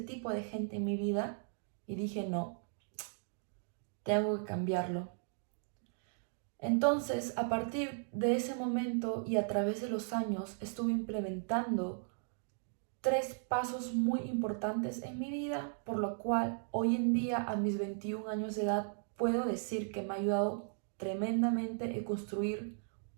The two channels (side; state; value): left; silent; digital silence